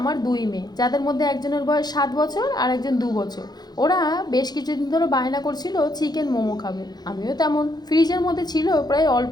দুই মেয়ে, যাদের মধ্যে একজনের বয়স 7 বছর আর একজন 2 বছর। ওরা বেশ কিছুদিন ধরে বায়না করছিল চিকেন মোমো খাবে। আমিও তেমন, ফ্রিজের মধ্যে ছিল প্রায় অল্প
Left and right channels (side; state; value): right; late; 0.19 ms